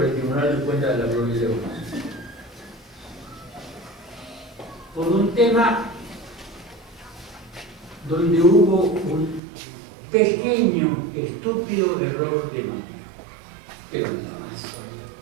el Tribunal de Cuentas de la provincia de Buenos Aires. Por un tema donde hubo un pequeño, estúpido error de manejo, pero nada más.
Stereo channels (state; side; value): drops out; left; at 9.4 s